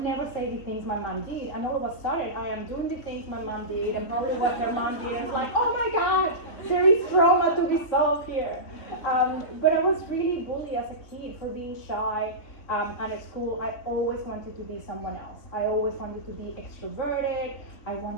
never say the things my mom did. And all of a sudden, I am doing the things my mom did, and probably what her mom did. It's like, oh my God, there is trauma to be solved here. But I was really bullied as a kid for being shy. And at school, I always wanted to be someone else. I always wanted to be extroverted. I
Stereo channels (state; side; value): late; right; 3.4 ms